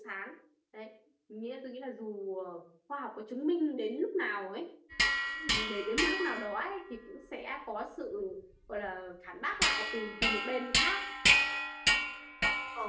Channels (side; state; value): both; identical; correlation 1.00